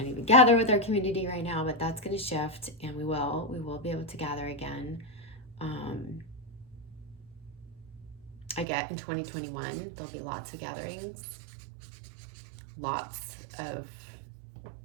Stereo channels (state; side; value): drops out; left; at 8.7 s